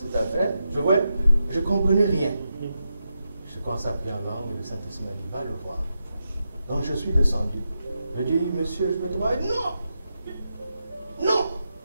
affaire. Je ne comprenais rien. Je commençais à prier en langue et le Saint-Esprit m'a dit, va le voir. Donc je suis descendu. Je dis, monsieur, je peux te voir? Non! Non!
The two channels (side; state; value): both; inverted; correlation -0.87